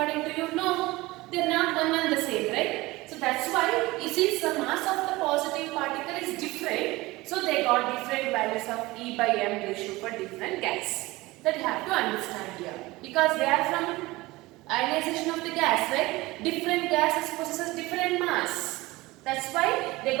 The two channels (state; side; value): quieter; left; 20.5 dB